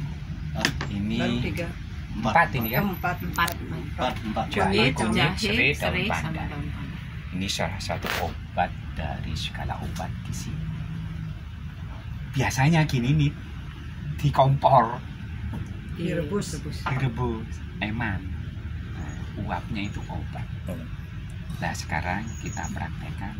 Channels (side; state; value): both; identical; correlation 1.00